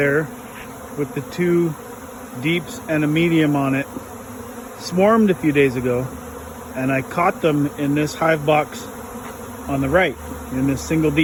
with the two deeps and a medium on it swarmed a few days ago, and I caught them in this hive box on the right, in this single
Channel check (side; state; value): both; identical; correlation 1.00